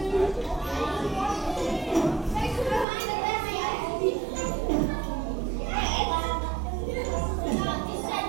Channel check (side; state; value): left; drops out; at 2.9 s